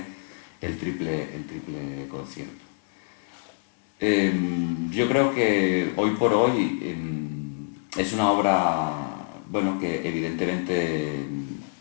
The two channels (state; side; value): silent; right; 61 dB below the other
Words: el triple concierto. Yo creo que hoy por hoy es una obra, bueno, que evidentemente